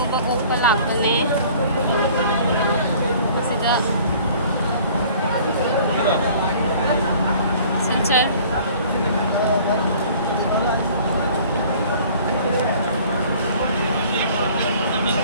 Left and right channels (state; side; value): inverted; both; correlation -0.51